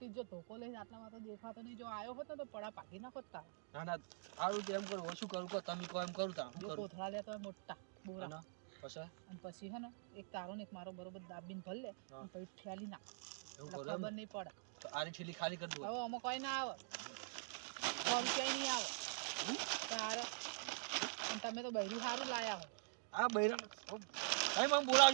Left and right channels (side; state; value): left; silent; digital silence